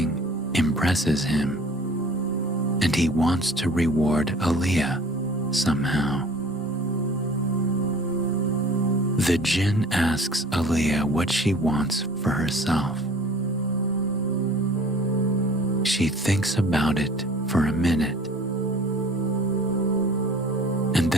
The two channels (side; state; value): both; normal; correlation 0.48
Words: impresses him, and he wants to reward Aaliyah somehow. The jinn asks Aaliyah what she wants for herself. She thinks about it for a minute, and